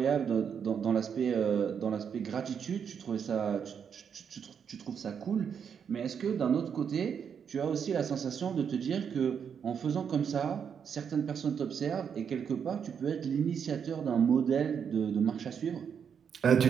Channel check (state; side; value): quieter; left; 7.3 dB